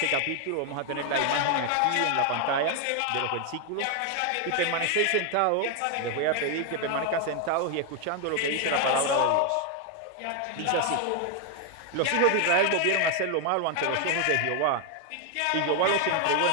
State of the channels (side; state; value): both; different; correlation 0.01